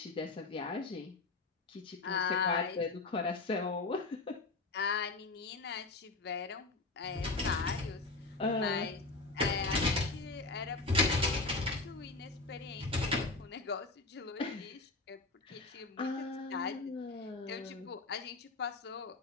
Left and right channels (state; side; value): quieter; right; 3.4 dB